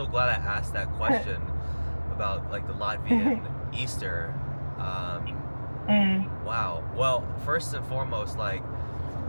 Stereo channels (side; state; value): both; inverted; correlation -1.00